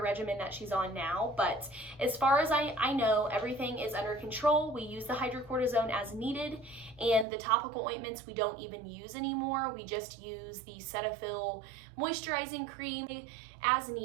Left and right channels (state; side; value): drops out; left; at 7.2 s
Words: regimen that she's on now. But as far as I know, everything is under control. We use the hydrocortisone as needed, and the topical ointments we don't even use anymore. We just use the Cetaphil moisturizing cream as